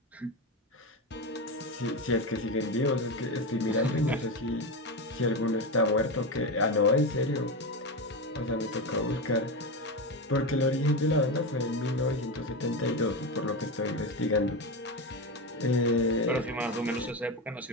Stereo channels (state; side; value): normal; both; correlation 0.16